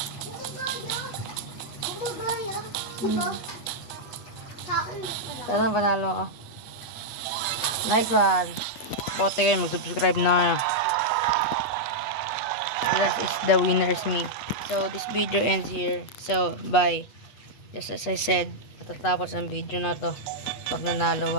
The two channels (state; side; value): late; right; 8.3 ms